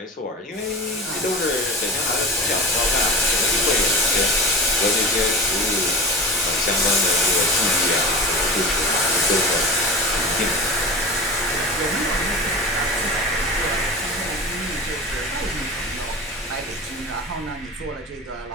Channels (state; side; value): normal; both; correlation 0.31